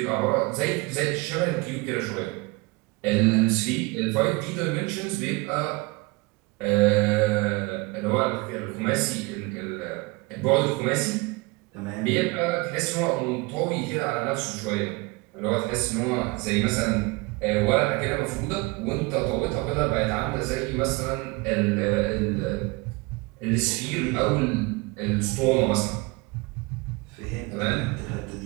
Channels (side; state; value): left; quieter; 24.7 dB